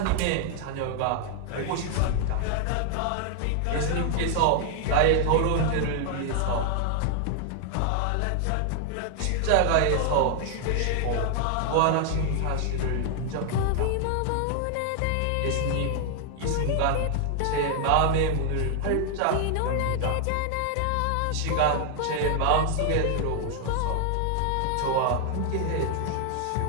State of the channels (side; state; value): both; different; correlation 0.00